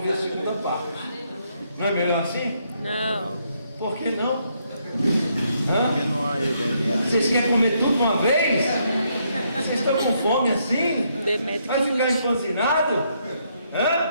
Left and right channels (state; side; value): inverted; both; correlation -0.74